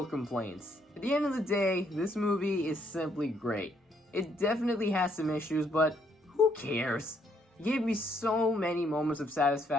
complaints. At the end of the day, this movie is simply great. It definitely has some issues, but who cares? It gave me so many moments of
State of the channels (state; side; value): normal; both; correlation 0.71